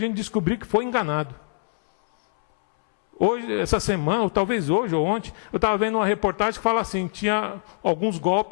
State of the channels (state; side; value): silent; right; 63 dB below the other